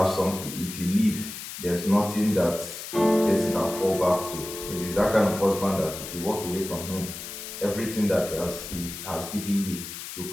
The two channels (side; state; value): left; noise; hiss, 9 dB below the sound